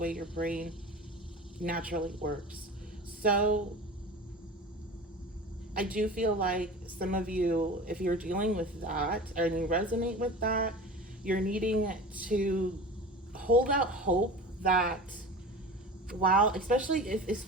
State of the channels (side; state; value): both; normal; correlation 0.35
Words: your brain naturally works. So I do feel like some of you, if you're dealing with that and you resonate with that, you're needing to hold out hope that, while, especially